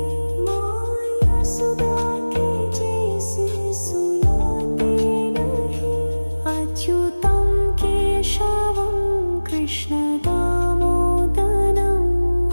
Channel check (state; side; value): inverted; both; correlation -1.00